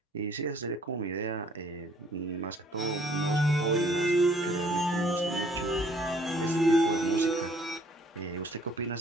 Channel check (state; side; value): normal; both; correlation 0.60